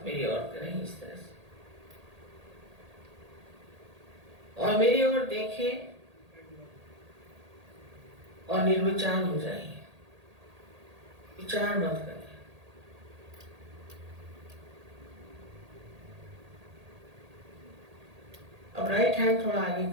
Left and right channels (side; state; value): left; late; 1.8 ms